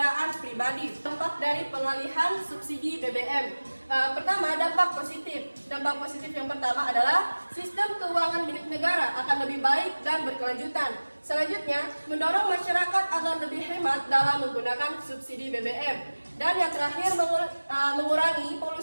pribadi. Dampak dari pengalihan subsidi BBM. Pertama, dampak positif. Dampak positif yang pertama adalah sistem keuangan milik negara akan lebih baik dan berkelanjutan. Selanjutnya, mendorong masyarakat agar lebih hemat dalam menggunakan subsidi BBM. Dan yang terakhir, mengurangi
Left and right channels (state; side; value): inverted; both; correlation -1.00